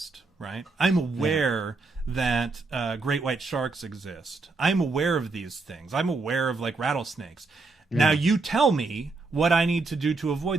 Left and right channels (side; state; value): left; quieter; 3.7 dB